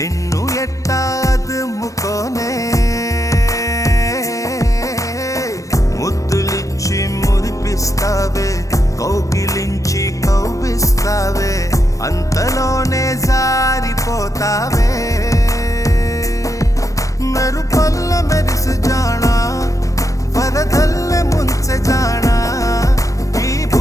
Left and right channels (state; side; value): late; right; 0.16 ms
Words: ఎట్టా అదుముకోనే ముద్దులిచ్చి మురిపిస్తావే కౌగిలించి కౌగిస్తావే అంతలోనే జారిపోతావే మెరుపల్ల మెరిసి జానా వరదల్లె ముంచె జానా ఈ